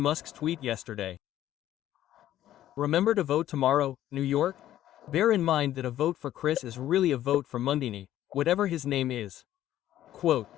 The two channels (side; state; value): right; quieter; 12.7 dB